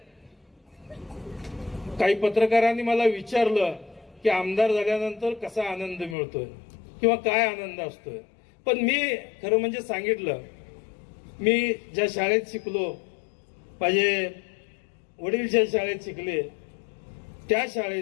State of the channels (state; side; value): drops out; right; at 6.2 s